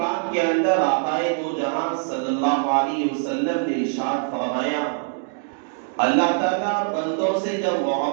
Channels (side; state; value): left; silent; digital silence